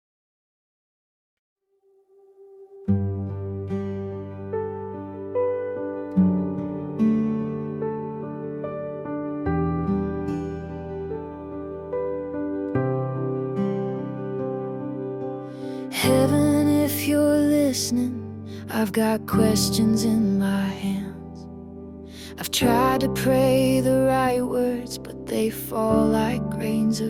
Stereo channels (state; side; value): identical; both; correlation 1.00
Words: Heaven, if you're listening, I've got questions in my hands. I've tried to pray the right words, but they fall like grains